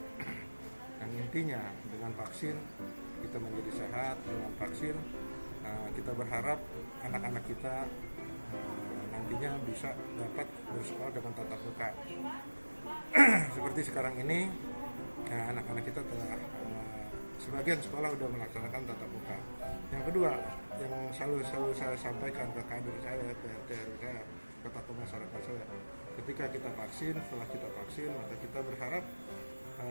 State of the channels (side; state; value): both; inverted; correlation -1.00